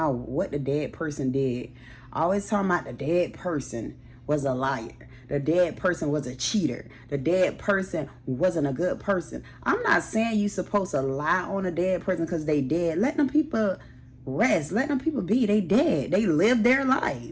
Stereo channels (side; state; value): both; identical; correlation 1.00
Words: what the dead person did. Always talking about the dead person was a liar. The dead person was a cheater. The dead person wasn't a good person. I'm not saying you supposed to lie on a dead person because they dead. Let them people rest. Let them people be. They dead. They lived their